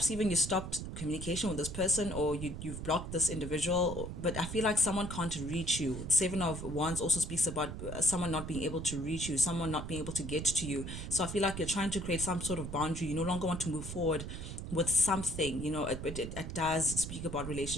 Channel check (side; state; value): right; noise; rumble, 7 dB below the sound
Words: even you stopped communication with this person, or you've blocked this individual, but I feel like someone can't reach you. Seven of Wands also speaks about someone not being able to reach you, someone not being able to get to you. So I feel like you're trying to create some sort of boundary. You no longer want to move forward with something. It does speak about